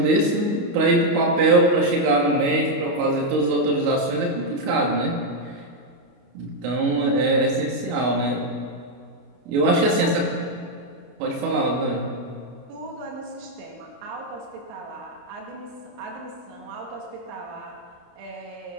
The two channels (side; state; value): left; late; 28 ms